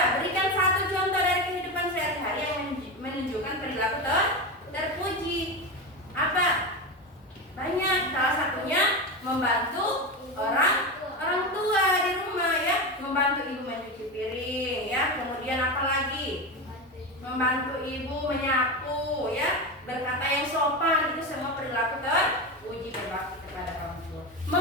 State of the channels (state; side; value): normal; both; correlation 0.19